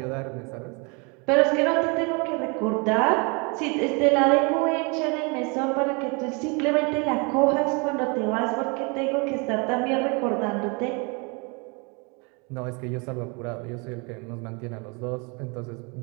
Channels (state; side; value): quieter; left; 31.5 dB